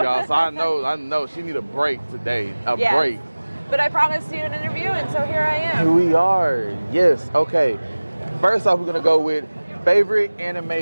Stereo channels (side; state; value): both; inverted; correlation -1.00